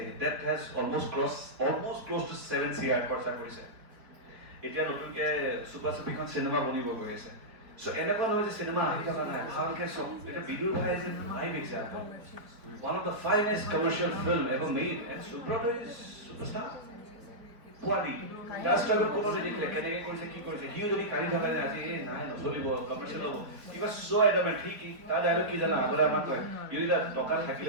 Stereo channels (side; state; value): left; late; 4.4 ms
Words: that has almost close to 7 CR খৰচা কৰিছে এতিয়া নতুনকৈ চুপা চুপিখন চিনেমা বনিব গৈ আছে চ' এনেকুৱা নহয় যে চিনেমা আহি থকা নাই ভালকৈ চব এতিয়া বিদুৰ ভাই যে live example one of the finest commercial film ever made and Subrata is superstar পোৱালি তাৰ ষ্ট্ৰাগল কোনো নেদেখিলে কেনেকৈ কৰিছে কি কৰিছে সিও যদি কাঢ়ি থকা যে আজি এই নাই নচলিব কমাৰ্চিয়েল হ'ব কিবা চ' এডামেণ্ট ঠিক তাৰ ডাইলগ কি জানা আগতে আমাক কয় ইউৰিটা টকা